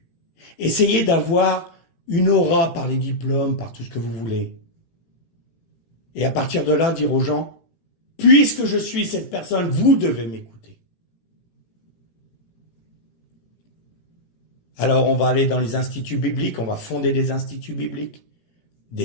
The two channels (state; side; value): late; right; 18 ms